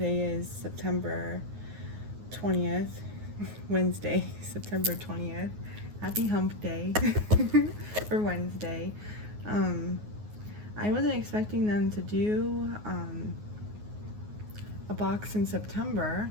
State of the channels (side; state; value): left; late; 9.5 ms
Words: is September 20th, Wednesday, September 20th. Happy Hump Day for Wednesday. I wasn't expecting them to do a box in September,